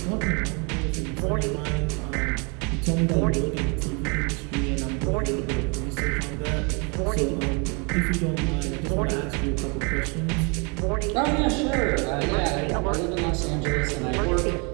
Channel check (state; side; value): quieter; left; 32.6 dB